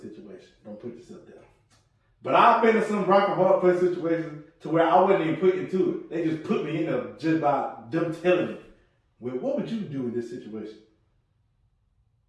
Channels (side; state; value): both; identical; correlation 1.00